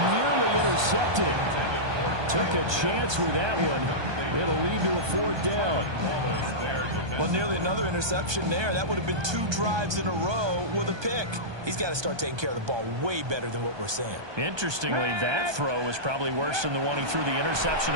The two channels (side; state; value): left; late; 1.2 ms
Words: nearly intercepted. Took a chance with that one. It'll lead to a 4th down. Well, nearly another interception there. That would have been 2 drives in a row with a pick. He's got to start taking care of the ball way better than what we're seeing. Interestingly, that throw was probably worse than the one he threw the interception